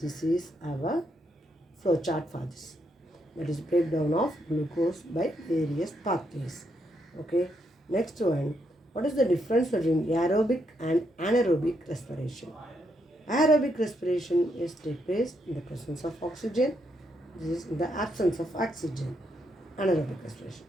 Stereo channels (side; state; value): both; normal; correlation 0.78